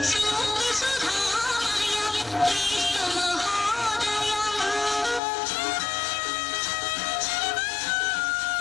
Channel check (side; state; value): right; drops out; at 5.2 s